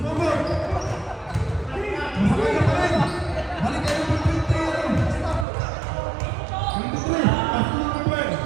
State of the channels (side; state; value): left; drops out; at 5.5 s